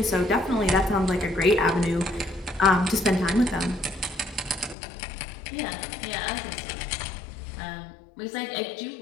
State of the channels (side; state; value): right; drops out; at 4.8 s